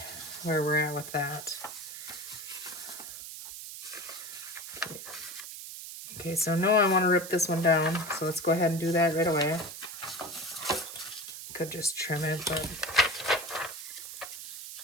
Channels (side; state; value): right; noise; hiss, 10 dB below the sound